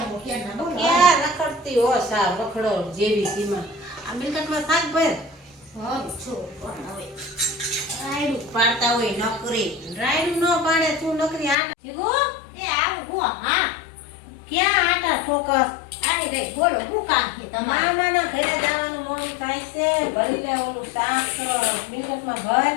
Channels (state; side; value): drops out; right; at 11.6 s